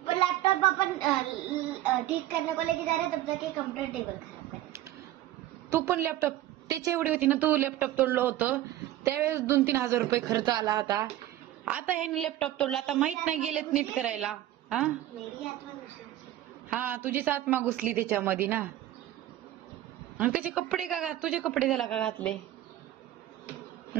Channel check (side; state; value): left; quieter; 13.9 dB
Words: लैपटॉप अपन ठीक करने को लेके जा रहे तब तक कंप्यूटर टेबल खराब करे. तू पण लॅपटॉप त्याची एवढी होती ना. तू लॅपटॉप तोडलं होतं त्यावेळेस 2-3 हजार रुपये खर्च आला होता. आता ह्याने लॅपटॉप तोडला. आता माहित नाही गेलेत नीट करायला. हा मेरी आत्मा घुसली. हा तुझीच आत्मा घुसली त्याच्यामध्ये ना. आणि त्याचे कपडे का तुझे कपडे त्याला का घातले?